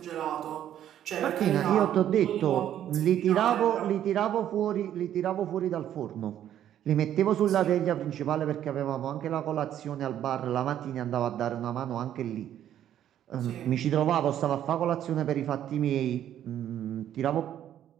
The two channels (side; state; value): left; quieter; 10.9 dB